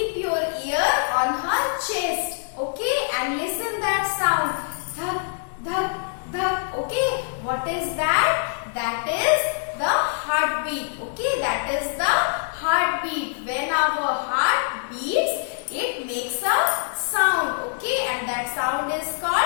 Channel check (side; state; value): right; silent; digital silence